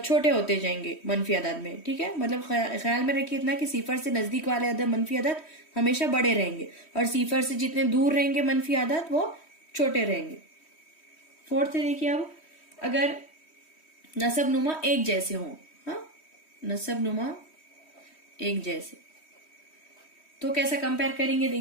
होते जाएंगे मनफी अदद में। ठीक है, मतलब ख्याल में रखिए इतना कि सिफर से नजदीक वाले अदद मनफी अदद हमेशा बड़े रहेंगे और सिफर से जितने दूर रहेंगे मनफी अदद वो छोटे रहेंगे। फोर्थ है देखिए, अब अगर नसब नुमा एक जैसे हों, हाँ, नसब नुमा एक जैसे, तो कैसा कंपेयर करेंगे,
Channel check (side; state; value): right; late; 3.1 ms